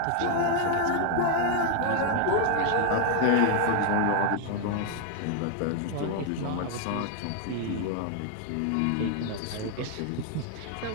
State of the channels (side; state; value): both; different; correlation 0.00